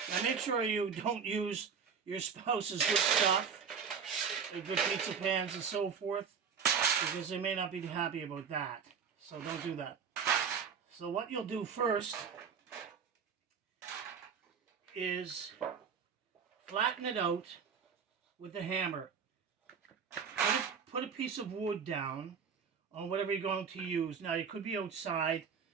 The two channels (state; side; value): quieter; left; 6.5 dB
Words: Now make sure you don't use your spouse's good stuff, their good pizza pans and so forth, because they may not be happy about that. So don't do that. So what you'll do first is flatten it out with a hammer. Put a piece of wood down on whatever you're going to use. Now you could be outside